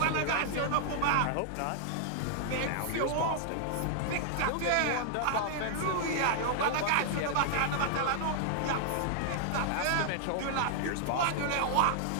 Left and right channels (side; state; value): both; different; correlation 0.00